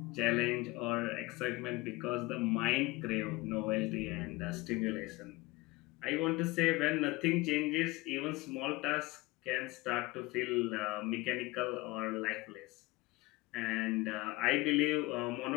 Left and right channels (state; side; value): quieter; right; 21.6 dB